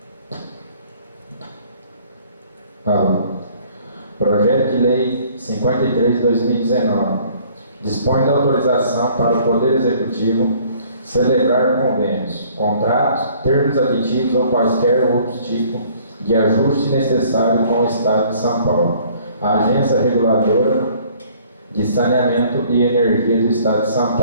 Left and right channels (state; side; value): inverted; both; correlation -0.57